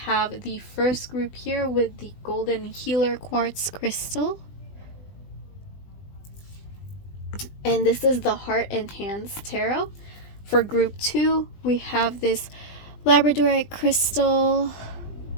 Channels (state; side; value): late; right; 20 ms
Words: the first group here with the Golden Healer Quartz Crystal. And this is the Heart and Hands Tarot. For group 2, we have this Labradorite Crystal